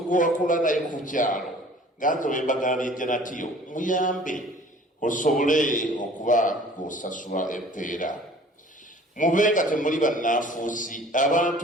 gwe wakula naye ku kyalo nga nze bwe mbagambye Janatiyo muyambe osobole okuba ng'osasula empeera. Mube nga temuli bannaafuusi.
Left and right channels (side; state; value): both; normal; correlation 0.49